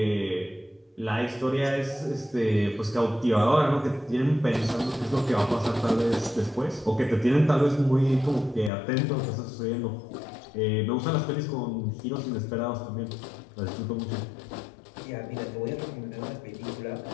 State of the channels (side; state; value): right; drops out; at 8.7 s